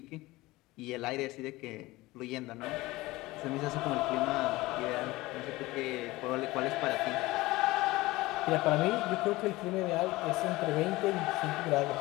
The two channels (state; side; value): quieter; right; 19.7 dB